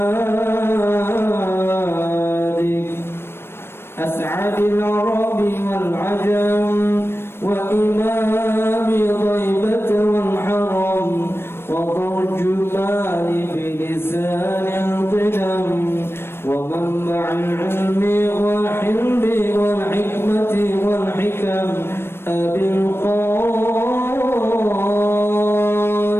أسعد العرب والعجم وإمام ضيبة والحرم وترجمان بلسان القدم ومنبع العلم والحلم والحكمة والحكم أبي القاسم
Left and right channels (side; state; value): right; late; 0.12 ms